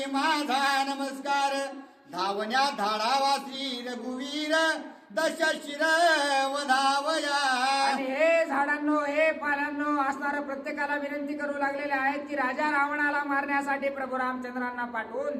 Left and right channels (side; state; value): both; identical; correlation 1.00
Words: माझा नमस्कार धावण्या धाडावा श्री रघुवीर दशशिर वधावया. आणि हे झाडांनो हे पानांनो असणारं प्रत्येकाला विनंती करू लागलेले आहेत की राजा रावणाला मारण्यासाठी प्रभू रामचंद्रांना पाठवून